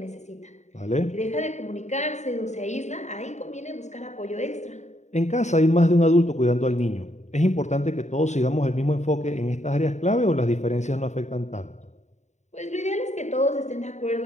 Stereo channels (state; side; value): late; right; 0.34 ms